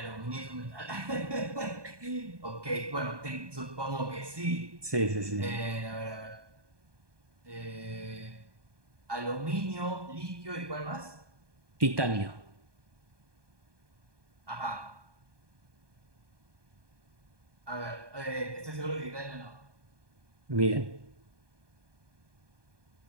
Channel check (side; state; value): left; late; 1.2 ms